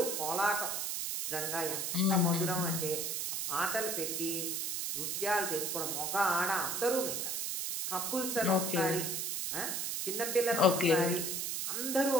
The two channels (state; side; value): noise; right; hiss, 1 dB below the sound